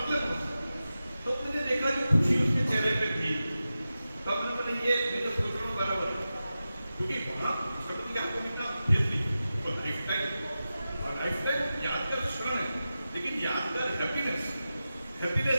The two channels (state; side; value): inverted; both; correlation -0.93